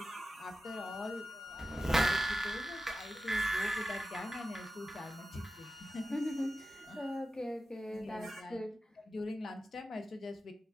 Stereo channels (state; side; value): normal; both; correlation 0.93